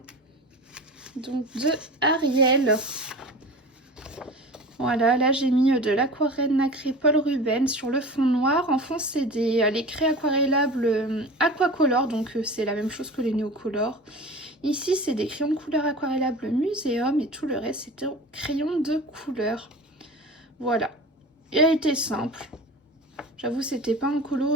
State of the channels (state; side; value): normal; both; correlation 0.35